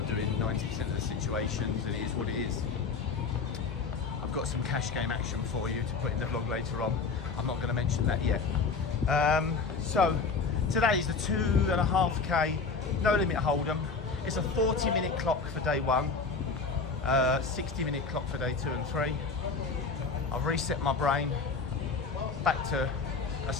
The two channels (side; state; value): right; quieter; 4.6 dB